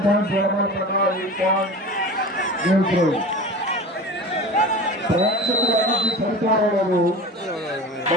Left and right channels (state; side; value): normal; both; correlation 0.34